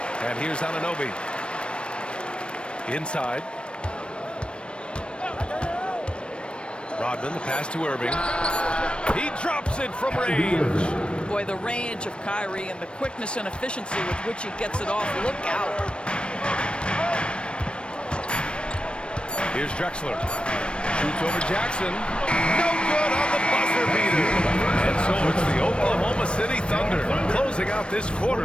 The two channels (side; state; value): right; late; 0.057 ms